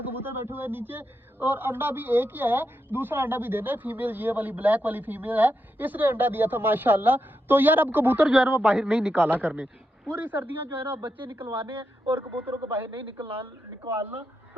कबूतर बैठे हुए है नीचे और अंडा भी एक ही है, दूसरा अंडा भी देना है। फीमेल ये वाली ब्लैक वाली फीमेल है, इसने अंडा दिया था माशाल्लाह। तो यार अब कबूतर जो है ना वो बाहर नहीं निकाला करने, पूरी सर्दियां जो है ना बच्चे निकलवाने हैं और कबूतरों को बाहर नहीं निकालना।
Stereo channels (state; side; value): normal; both; correlation 0.85